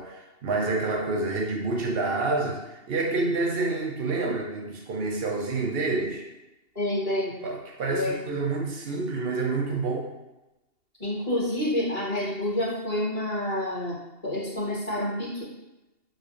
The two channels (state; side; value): late; left; 2.8 ms